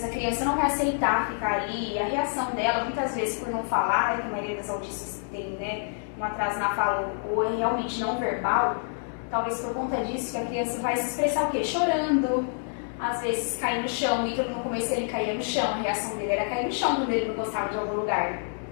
a criança não vai aceitar ficar ali, a reação dela, muitas vezes por não falar, que a maioria das autistas tem, né, um atraso na fala ou é realmente não verbal, talvez por conta disso que a criança vai se expressar o quê? Chorando, às vezes cair no chão, e no começo ele caía no chão, a reação dele era cair no chão quando ele não gostava de algum lugar.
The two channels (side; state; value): right; silent; digital silence